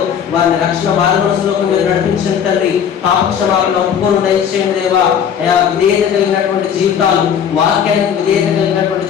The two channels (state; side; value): quieter; right; 8.2 dB